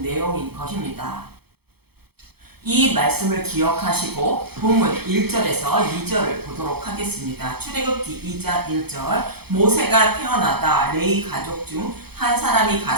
내용인 것입니다. 이 말씀을 기억하시고 본문 1절에서 2절을 보도록 하겠습니다. 출애굽기 2장 1절. 모세가 태어나다 레위 가족 중 한 사람이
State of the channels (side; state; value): left; late; 0.96 ms